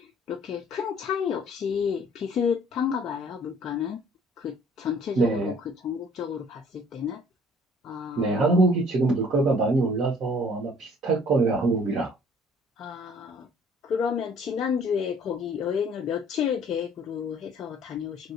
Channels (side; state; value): both; normal; correlation 0.56